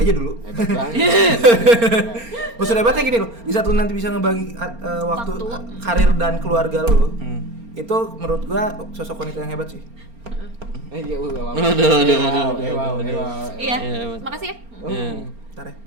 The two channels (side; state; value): left; late; 4.3 ms